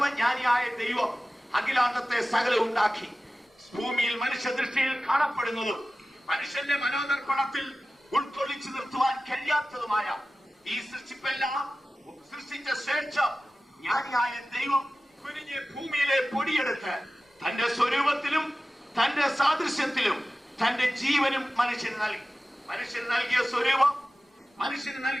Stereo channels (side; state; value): both; normal; correlation 0.96